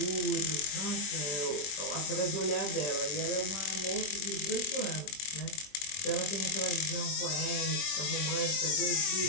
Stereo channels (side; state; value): right; late; 21 ms